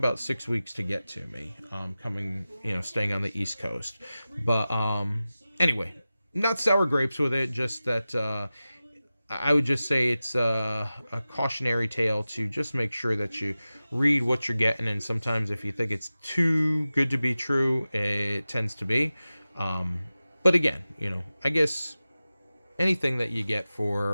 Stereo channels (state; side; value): inverted; both; correlation -0.95